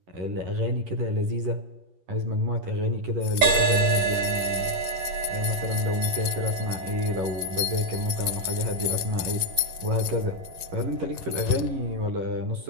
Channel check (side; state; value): left; late; 11 ms